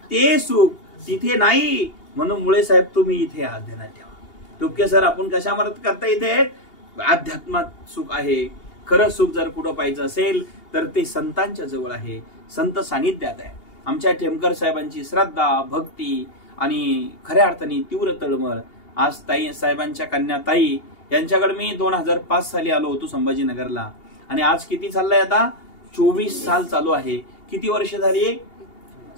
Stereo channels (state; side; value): late; right; 2.8 ms